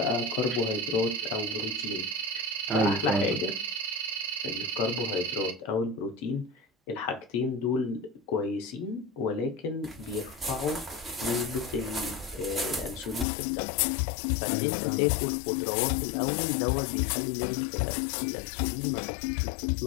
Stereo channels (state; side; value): drops out; right; at 13.2 s